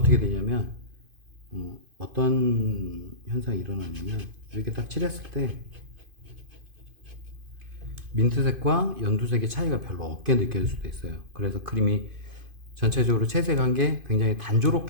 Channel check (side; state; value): left; late; 2.5 ms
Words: 되냐면 어떤 현상이 일어나냐면 이렇게 딱 칠했을 때 민트색과 연두색의 차이가 별로 없게 느껴질 수도 있어요. 그래서 그림이 전체적으로 채색한 게 굉장히